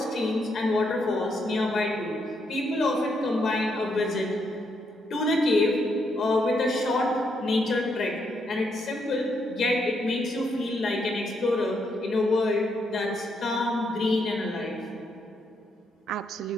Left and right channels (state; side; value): normal; both; correlation 0.77